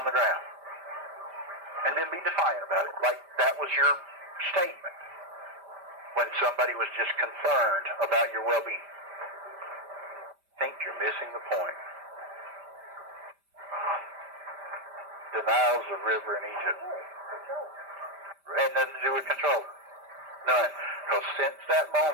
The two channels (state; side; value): late; left; 5.1 ms